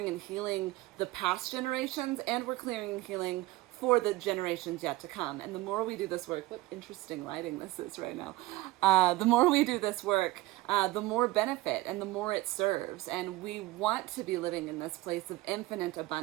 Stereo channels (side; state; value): left; quieter; 18.3 dB